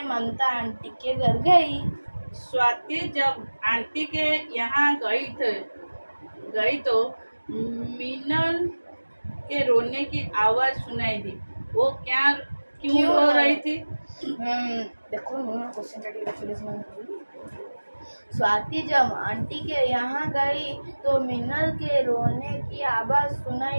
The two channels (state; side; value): inverted; both; correlation -1.00